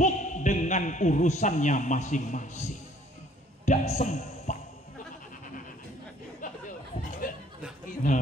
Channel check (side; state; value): both; normal; correlation 0.59